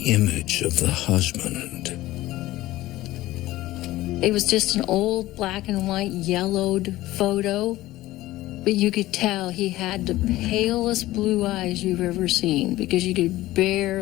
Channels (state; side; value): quieter; right; 16.7 dB